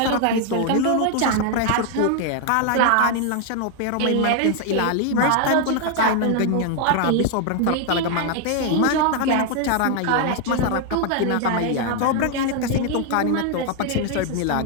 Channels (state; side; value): different; both; correlation 0.00